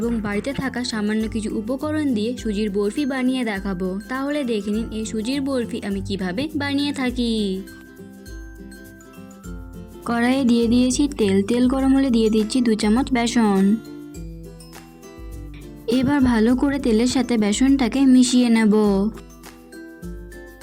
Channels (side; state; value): both; identical; correlation 1.00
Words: বাড়িতে থাকা সামান্য কিছু উপকরণ দিয়ে সুজির বরফি বানিয়ে দেখাবো। তাহলে দেখে নিন এই সুজির বরফি আমি কিভাবে বানিয়ে থাকি। কড়াইয়ে দিয়ে দিয়েছি তেল গরম হলে দিয়ে দিচ্ছি 2 চামচ বেসন। এবার ভালো করে তেলের সাথে বেসনটাকে মিশিয়ে নেব।